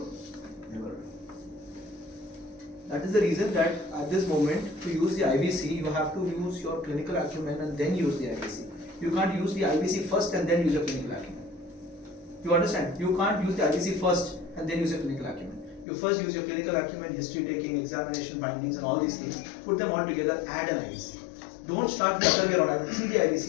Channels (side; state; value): right; drops out; at 15.9 s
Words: never do. That is the reason that at this moment, to use the IVC, you have to use your clinical acumen and then use the IVC. You can't use the IVC first and then use your clinical acumen. You understand? You can't use the IVC first and then use your clinical acumen. You first use your clinical acumen, history taking, examination findings, and all these things. Put them all together, add an IVC. Don't start the other way around. I will see the IVC